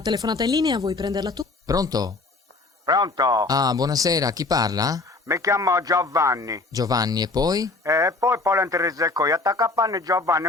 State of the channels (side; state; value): right; quieter; 3.5 dB